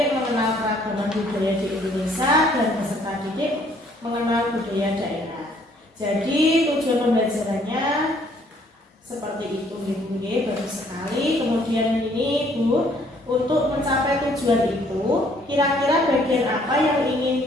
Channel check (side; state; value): both; normal; correlation 0.63